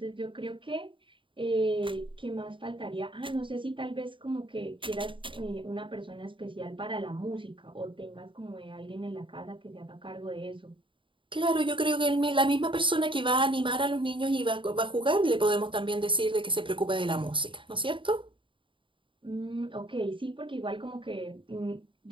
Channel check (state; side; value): late; left; 0.24 ms